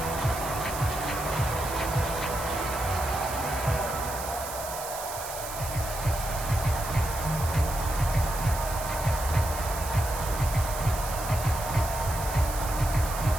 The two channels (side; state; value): right; noise; hiss, 9 dB below the sound